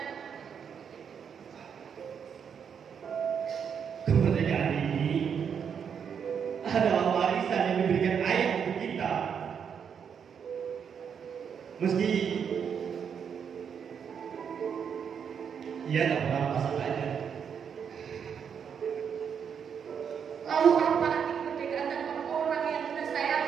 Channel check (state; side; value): quieter; left; 7.3 dB